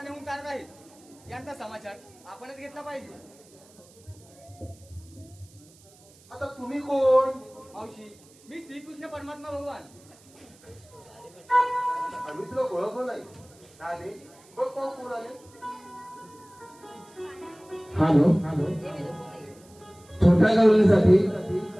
नेऊन चालत आहेत यांचा समाचार आपणच घेतला पाहिजे. आता तुम्ही कोण? मावशी मी श्रीकृष्ण परमात्मा भगवान. आम्ही तुला ओळखलं नाही. आले बघ पाहू कोण आले. हॅलो छोट्या गावलीसाठी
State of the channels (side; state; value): right; noise; hiss, 26 dB below the sound